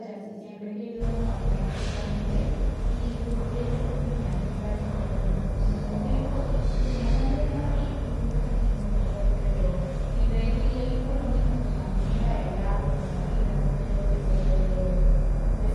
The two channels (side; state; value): both; identical; correlation 1.00